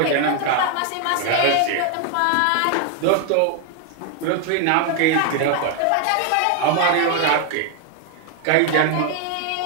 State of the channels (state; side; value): different; both; correlation 0.00